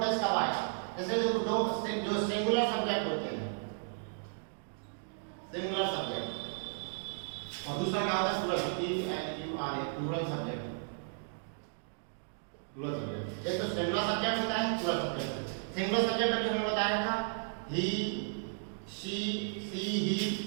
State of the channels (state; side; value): silent; left; digital silence